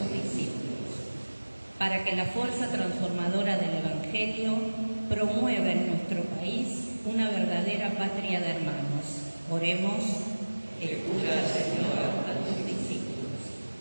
discípulos, para que la fuerza transformadora del Evangelio promueva en nuestro país una verdadera patria de hermanos. Oremos: escucha, Señor, a tus discípulos,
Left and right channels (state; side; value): inverted; both; correlation -1.00